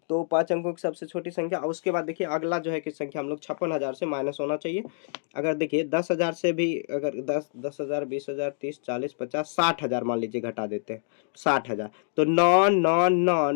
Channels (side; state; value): right; silent; digital silence